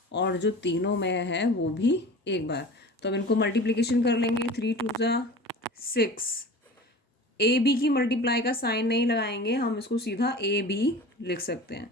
और जो तीनों में है वो भी एक बार। तो अब इनको मल्टीप्लिकेशन कर लेंगे, 3 2 ज़ा 6। ए बी की मल्टीप्लाई का साइन नहीं लगाएंगे, हम इसको सीधा ए बी लिख सकते हैं।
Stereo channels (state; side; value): normal; both; correlation 0.37